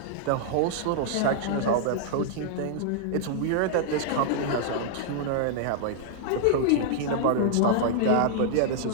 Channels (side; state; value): both; different; correlation -0.01